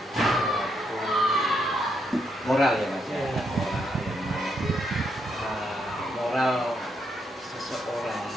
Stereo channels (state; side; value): normal; both; correlation 0.78